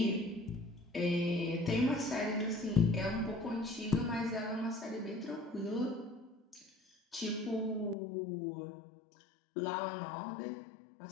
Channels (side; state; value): right; drops out; at 8.0 s